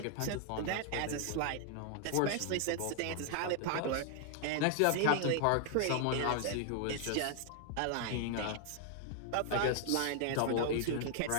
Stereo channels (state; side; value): different; both; correlation 0.00